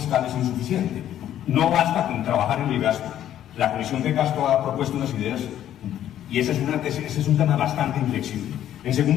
es insuficiente. No basta con trabajar en el gasto. La Comisión de Gasto ha propuesto unas ideas, y ese es un tema bastante inflexible. En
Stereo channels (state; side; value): quieter; right; 11.4 dB